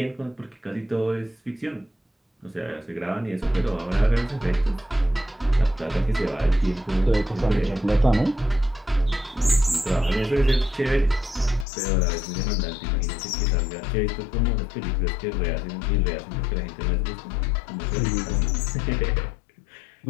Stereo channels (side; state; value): right; drops out; at 11.7 s